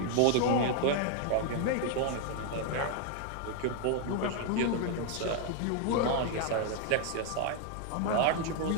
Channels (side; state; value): both; different; correlation 0.01